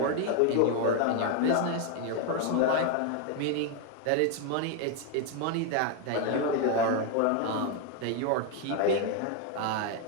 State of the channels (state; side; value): different; both; correlation 0.01